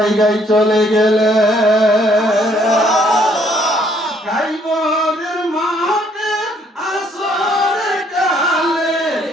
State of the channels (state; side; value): normal; both; correlation 0.66